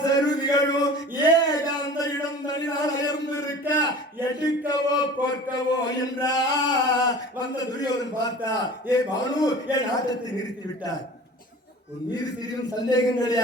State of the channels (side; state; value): both; normal; correlation 0.40